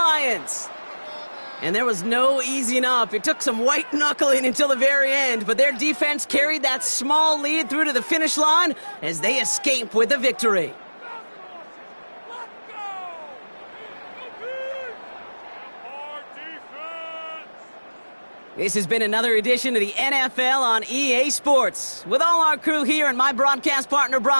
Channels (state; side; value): inverted; both; correlation -1.00